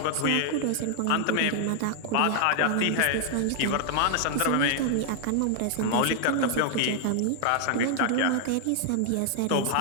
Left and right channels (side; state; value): both; different; correlation 0.00